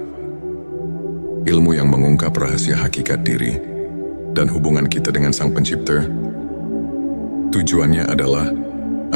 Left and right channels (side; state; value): both; inverted; correlation -1.00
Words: ilmu yang mengungkap rahasia hakikat diri dan hubungan kita dengan Sang Pencipta. Tujuannya adalah